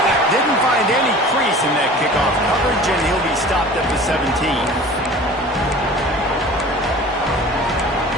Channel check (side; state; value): both; normal; correlation 0.42